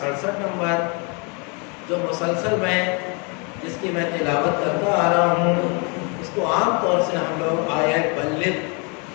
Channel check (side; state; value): right; quieter; 33.6 dB